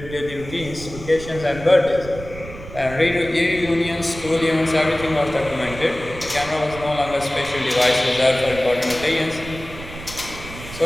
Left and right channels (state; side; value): noise; right; rumble, 13 dB below the sound